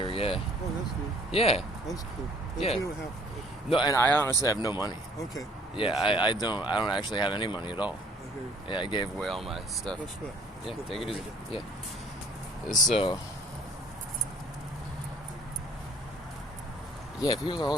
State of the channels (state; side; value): normal; both; correlation 0.56